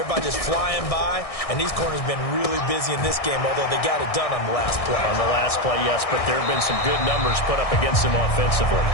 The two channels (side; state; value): right; late; 1.6 ms